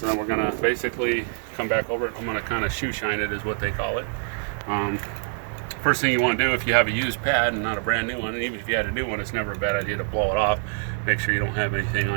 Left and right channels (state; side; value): silent; left; 62 dB below the other